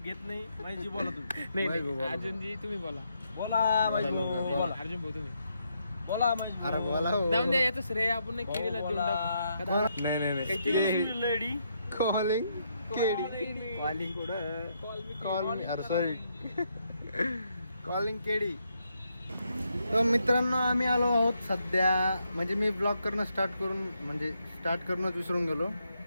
घेत नाही. माझी बोला तुम्ही. नाही महेश भाऊ नाही बोला. अर्जुनजी तुम्ही बोला. बोला माझी बोला. अर्जुन भाऊ तुम्ही बोला माझी अरे बोला हो. जाऊन द्या याचं श्रेय आपण नाही केलेलं देऊन टाकू. नाही नाही नाही lady calling KD calling call मी अरे सॉरी कॉलिंग केडी. तर मित्रांनो आम्ही आलो आहोत सध्या, म्हणजे मी ब्लॉग करणं स्टार्ट करूनच विसरून गेलो.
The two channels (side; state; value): both; inverted; correlation -0.78